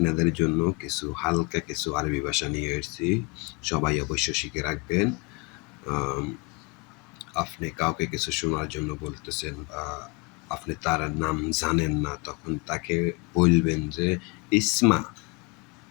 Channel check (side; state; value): right; quieter; 28.4 dB